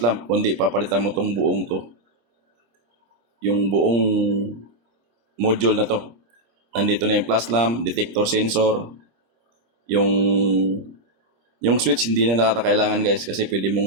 kundi papalitan mo tong buong to. Yung buong module na to. Nandito na yung flash lamp, detector sensor, yung switch hindi na nakakailangan guys, kasi pwede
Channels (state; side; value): late; left; 26 ms